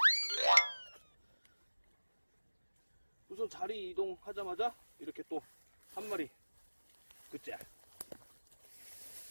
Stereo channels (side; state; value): both; inverted; correlation -1.00